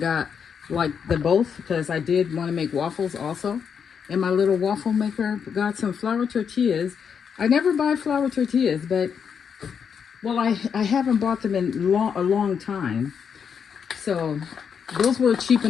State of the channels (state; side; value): quieter; right; 7.0 dB